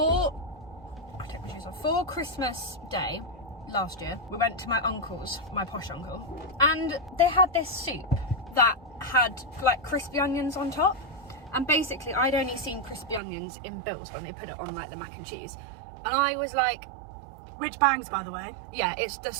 Christmas Day last year, we went to my uncle's, my posh uncle, and they had this soup that had like crispy onions on top. And basically, I'd only seen crispy onions in bills when they put it on like the mac and cheese, and I was like, Which bangs, by the way? yeah, they're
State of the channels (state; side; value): drops out; left; at 13.2 s